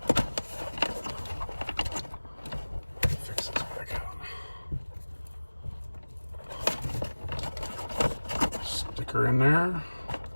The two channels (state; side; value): inverted; both; correlation -1.00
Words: Fix this back out. Sticker in there.